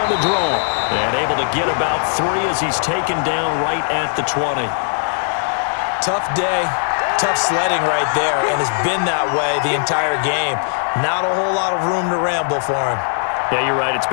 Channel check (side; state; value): right; silent; digital silence